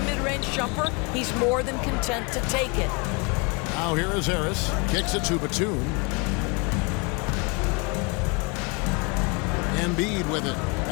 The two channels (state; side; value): quieter; right; 30.5 dB